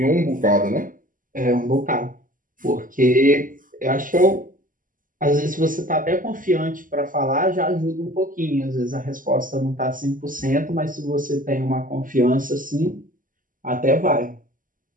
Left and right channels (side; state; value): left; late; 0.39 ms